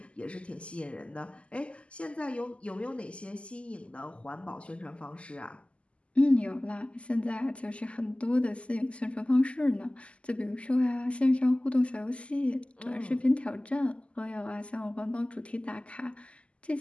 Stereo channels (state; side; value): late; right; 0.057 ms